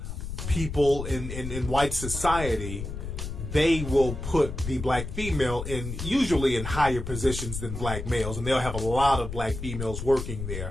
people in white society, they will put the black female usually in higher positions than black males, and they'll have a lot of black females working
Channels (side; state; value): left; noise; rumble, 7 dB below the sound